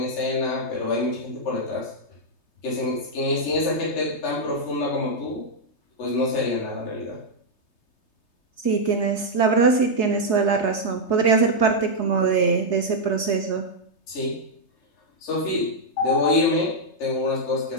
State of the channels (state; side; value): late; right; 3.3 ms